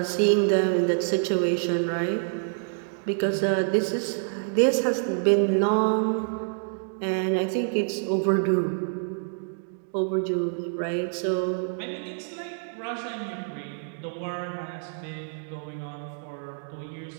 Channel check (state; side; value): silent; left; digital silence